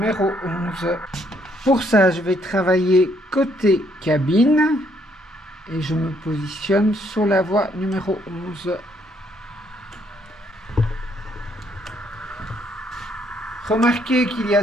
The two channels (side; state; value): both; normal; correlation 0.69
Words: 11. Pour ça, je vais travailler côté cabine et je me positionne sur la voie numéro 11. Remarquez qu'il y